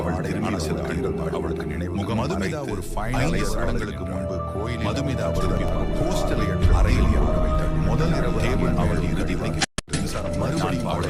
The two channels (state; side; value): identical; both; correlation 1.00